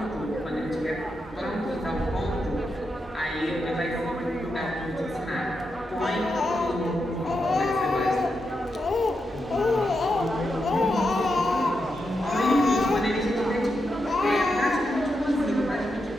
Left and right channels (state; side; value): normal; both; correlation 0.86